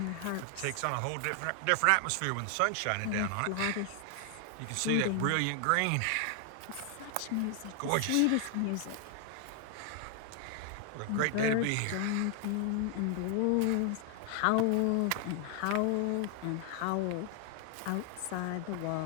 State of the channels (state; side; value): different; both; correlation 0.00